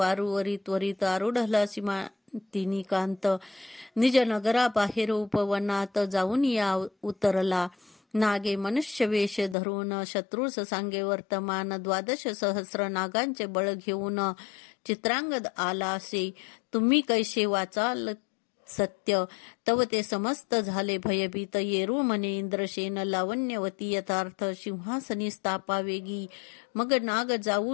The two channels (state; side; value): drops out; right; at 9.6 s